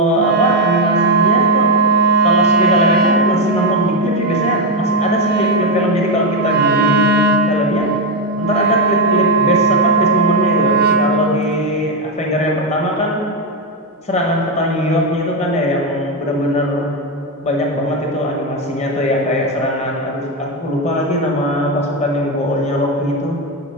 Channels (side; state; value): both; normal; correlation 0.05